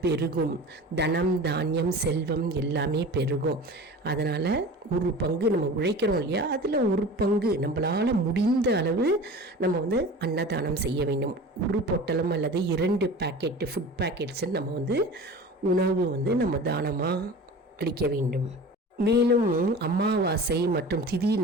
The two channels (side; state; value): both; normal; correlation 0.36